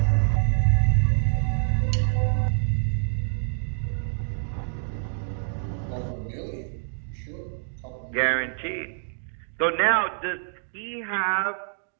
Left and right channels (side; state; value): left; silent; digital silence